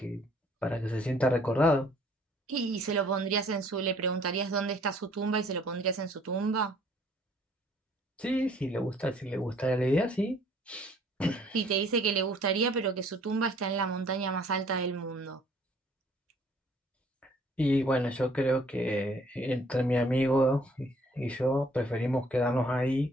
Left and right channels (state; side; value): normal; both; correlation 0.59